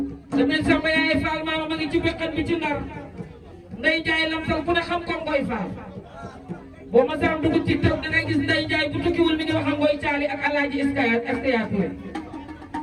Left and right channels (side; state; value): both; identical; correlation 1.00